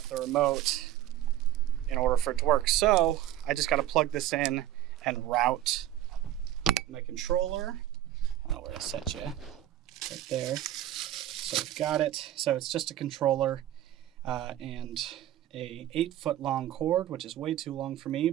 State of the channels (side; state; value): left; quieter; 13.0 dB